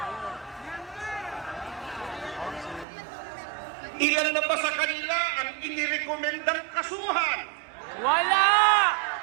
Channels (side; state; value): left; drops out; at 2.9 s